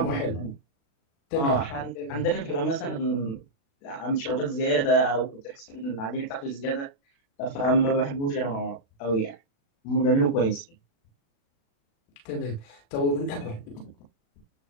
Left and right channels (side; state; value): right; late; 36 ms